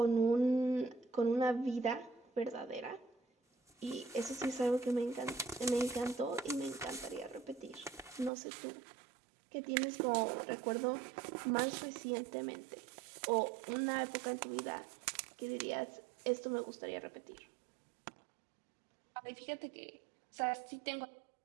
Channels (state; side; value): drops out; left; at 8.3 s